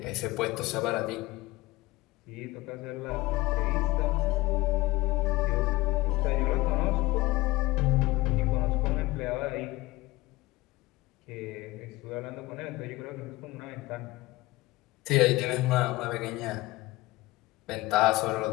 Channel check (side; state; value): right; quieter; 20.0 dB